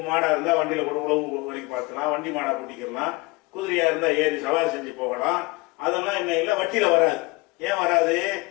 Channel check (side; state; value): right; quieter; 24.4 dB